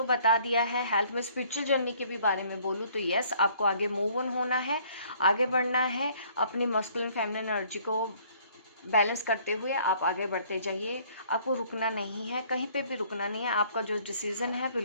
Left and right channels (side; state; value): both; inverted; correlation -0.59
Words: बता दिया है। हेल्थ में स्पिरिचुअल जर्नी के भी बारे में बोलूँ तो यस, आपको आगे मूव ऑन होना है, आगे बढ़ना है। अपनी मस्कुलिन फेमिनिन एनर्जी को बैलेंस करते हुए आप आगे बढ़ते जाइए, आपको रुकना नहीं है, कहीं पे भी रुकना नहीं है। आपका जो डिसीजन है